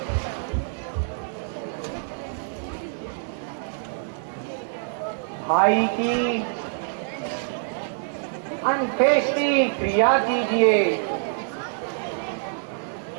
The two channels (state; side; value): silent; left; digital silence